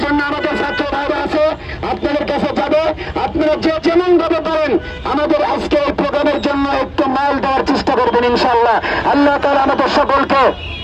জন্য আমাদের ছাত্র ভাইরা আছে, আপনাদের কাছে যাবে। আপনারা যে যেমন ভাবে পারেন আমাদের আজকে এই প্রোগ্রামের জন্য একটু মাল দেওয়ার চেষ্টা করবেন ইনশাআল্লাহ। আল্লাহ তাআলা আমাদের সকলকে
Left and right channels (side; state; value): both; identical; correlation 1.00